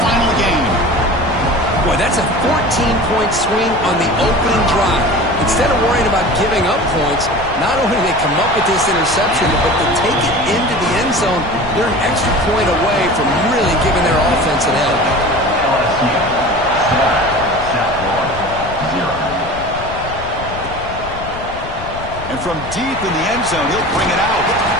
game. Boy, that's a 14-point swing on the opening drive. Instead of worrying about giving up points, not only do they come up with this interception, but they take it into the end zone. They're an extra point away from really giving their offense an edge. And from deep in the end zone, he'll bring it out.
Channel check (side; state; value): left; noise; rumble, 12 dB below the sound